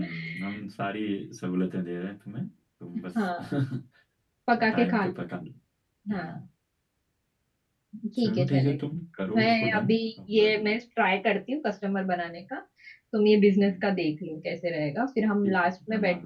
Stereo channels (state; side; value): identical; both; correlation 1.00